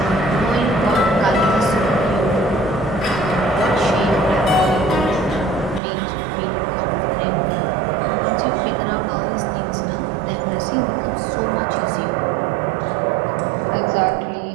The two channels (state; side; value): drops out; left; at 5.8 s